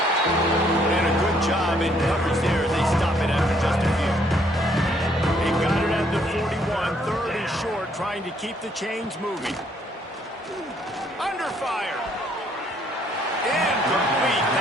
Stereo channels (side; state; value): both; normal; correlation 0.67